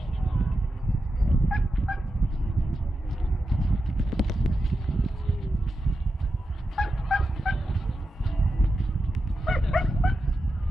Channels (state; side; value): normal; both; correlation 0.90